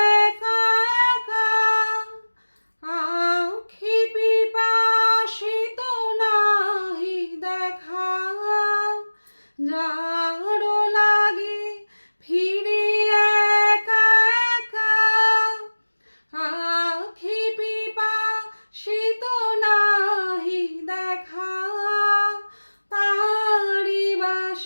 একা একা আঁখি পিপাসিত নাহি দেখা যার লাগি ফিরি একা একা আঁখি পিপাসিত নাহি দেখা তারি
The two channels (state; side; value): inverted; both; correlation -1.00